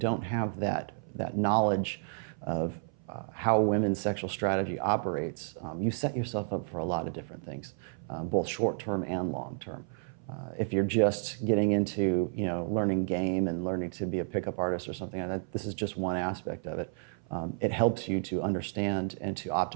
have that knowledge of how women's sexual strategy operates, you set yourself up for a lot of different things, both short-term and long-term. If you're just getting into learning game and learning to be a pickup artist or something like that, this is just one aspect of it. It helps you to understand and to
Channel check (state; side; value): silent; left; 56 dB below the other